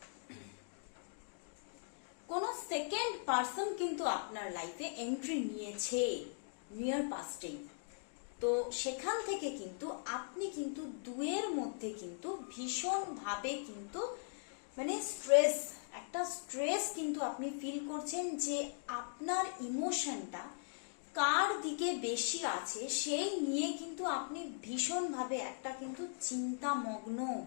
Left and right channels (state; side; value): silent; right; digital silence